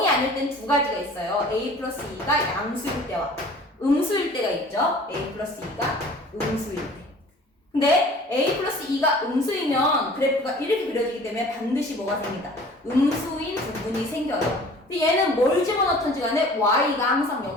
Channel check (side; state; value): both; normal; correlation 0.47